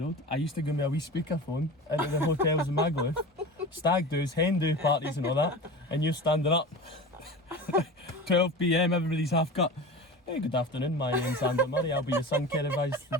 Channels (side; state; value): both; normal; correlation 0.32